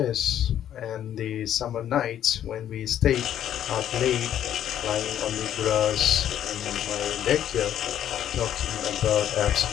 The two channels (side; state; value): right; quieter; 10.6 dB